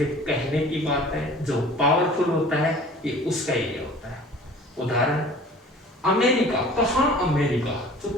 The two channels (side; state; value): both; normal; correlation 0.46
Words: कहने की बात है, जो पावरफुल होता है ये उसका एरिया होता है। उदाहरण अमेरिका, कहाँ अमेरिका, जो